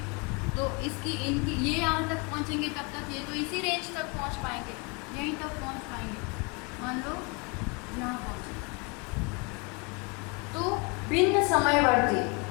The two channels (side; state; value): right; quieter; 30.7 dB